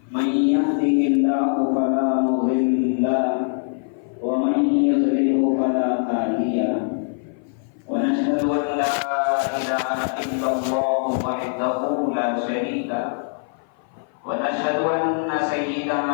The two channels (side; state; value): right; silent; 56 dB below the other